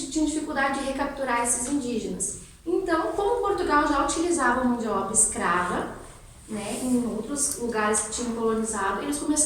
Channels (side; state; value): both; identical; correlation 1.00